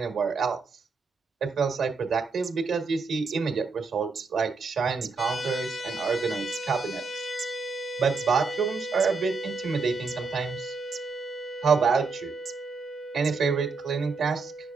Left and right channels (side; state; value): left; quieter; 4.5 dB